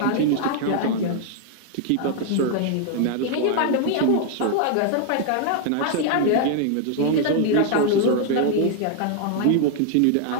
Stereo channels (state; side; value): different; both; correlation 0.00